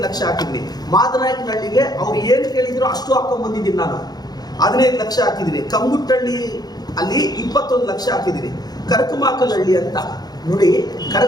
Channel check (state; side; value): late; right; 0.19 ms